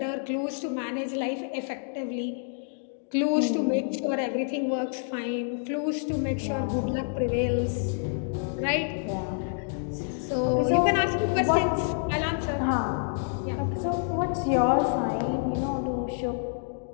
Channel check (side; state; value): right; silent; digital silence